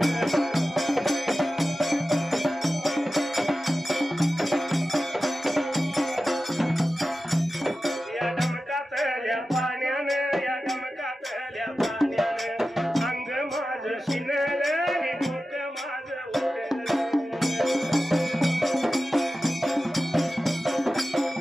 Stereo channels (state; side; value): normal; both; correlation 0.94